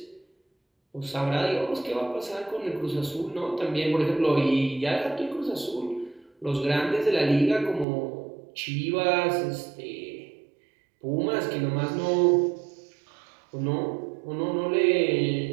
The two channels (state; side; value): drops out; left; at 7.9 s